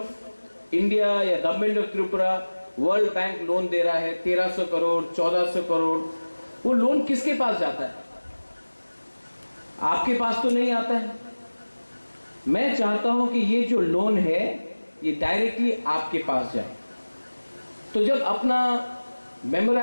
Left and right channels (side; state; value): both; inverted; correlation -1.00